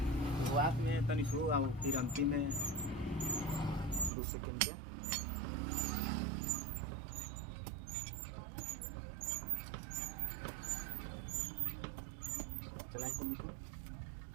शुरुआत में तनी शुरू और फिर अंतिम में 2 सेकंड के चलाएं तुम इसको।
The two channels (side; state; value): left; drops out; at 4.1 s